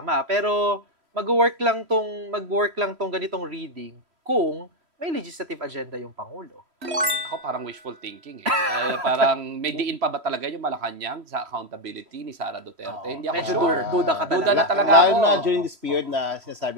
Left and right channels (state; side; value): late; left; 3.1 ms